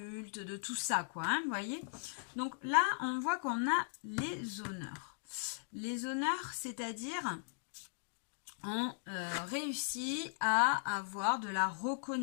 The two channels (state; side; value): silent; right; digital silence